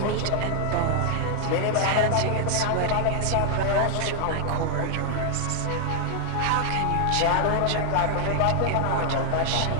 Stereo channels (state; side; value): different; both; correlation 0.00